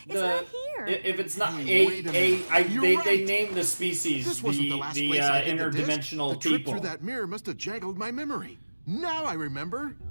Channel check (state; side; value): inverted; both; correlation -1.00